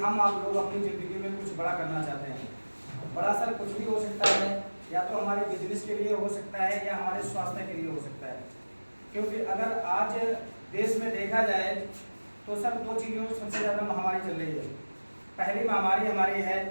आप लोग अपनी ज़िंदगी में कुछ बड़ा करना चाहते हैं। बड़ा सर कुछ भी हो सकता है, या तो हमारे बिजनेस के लिए हो सकता है या हमारे स्वास्थ्य के लिए हो सकता है। क्योंकि अगर आज देश में देखा जाए तो सर दो चीज़ों सबसे ज़्यादा महामारी चल रही है। पहली महामारी हमारी है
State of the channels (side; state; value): both; inverted; correlation -1.00